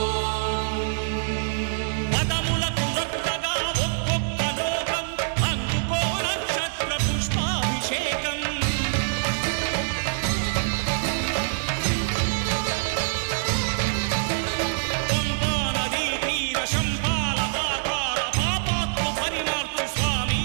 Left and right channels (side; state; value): left; silent; digital silence